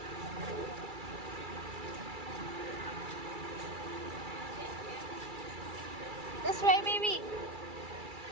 This way, baby.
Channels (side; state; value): left; late; 2.3 ms